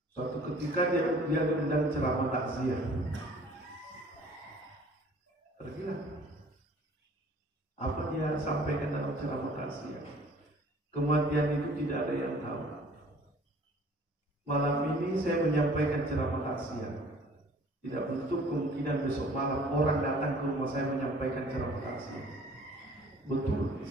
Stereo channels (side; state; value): both; normal; correlation 0.52